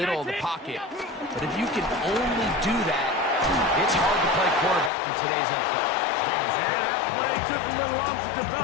of the pocket. But if you can only do that, it's hard to play quarterback in today's NFL. And that play took a little long to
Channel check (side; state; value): right; drops out; at 4.9 s